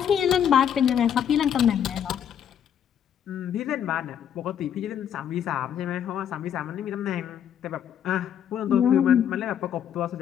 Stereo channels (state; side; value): quieter; right; 9.1 dB